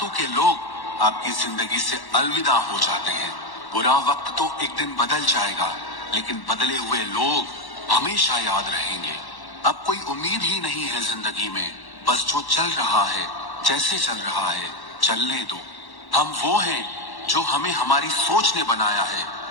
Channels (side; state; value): right; late; 1.1 ms